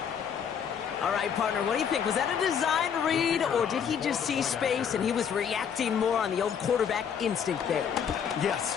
All right, partner, what do you think? Was that a design read, or did he just see space and he was reacting more on the old quarterback instinct there?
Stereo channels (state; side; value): quieter; right; 7.6 dB